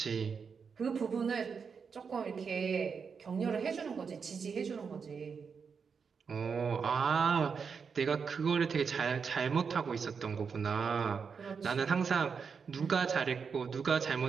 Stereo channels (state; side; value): quieter; left; 5.9 dB